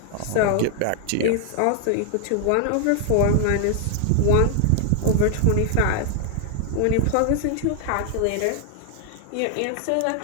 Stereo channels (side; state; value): both; different; correlation 0.00